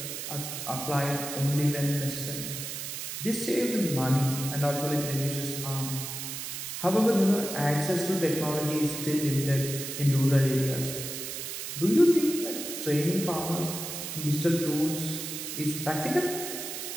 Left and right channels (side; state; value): right; noise; hiss, 6 dB below the sound